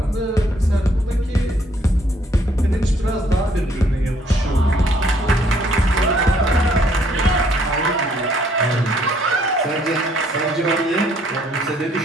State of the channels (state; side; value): normal; both; correlation 0.65